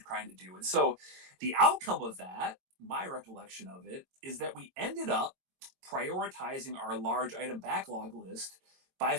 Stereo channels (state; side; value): late; left; 22 ms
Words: trying to do. And so the outcome of that, my recollection of it, is that we ended up prioritizing our large item backlog list by